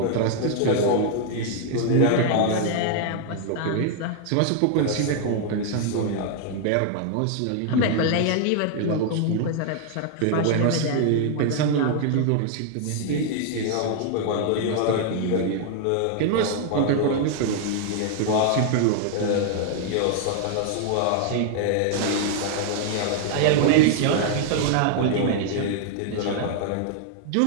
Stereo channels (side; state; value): both; different; correlation 0.00